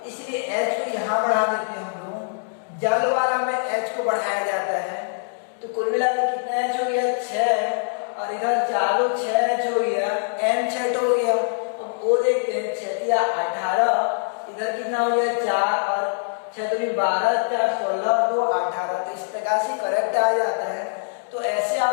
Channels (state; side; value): silent; right; digital silence